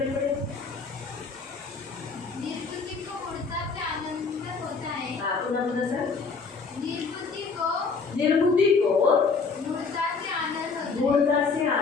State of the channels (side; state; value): right; quieter; 4.8 dB